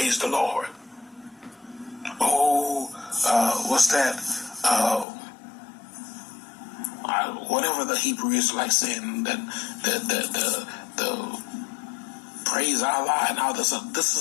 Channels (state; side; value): drops out; right; at 5.1 s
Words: the Lord. Oh, what's that? Whatever the Hebrew is like saying, that the praise Allah and all this. This